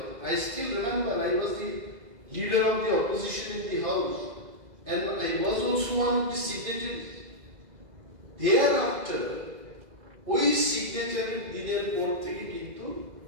I still remember I was the leader of the opposition in the house and I was also one of the signatories। Thereafter ওই সিগনেচারের দিনের পর থেকে কিন্তু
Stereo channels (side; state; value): left; late; 2.0 ms